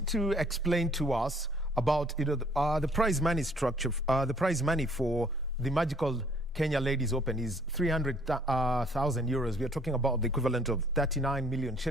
to explain to us about the prize money structure. The prize money for the magical Kenya Ladies Open is 300,000 euros. We are talking about the equivalent of 39 million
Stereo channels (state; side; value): normal; both; correlation 0.60